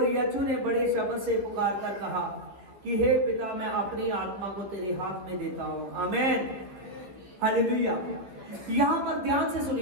यीशु ने बड़े शब्द से पुकार कर कहा कि हे पिता, मैं अपनी आत्मा को तेरे हाथ में देता हूं। आमीन, हालेलुया। यहां पर ध्यान से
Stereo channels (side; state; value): left; late; 15 ms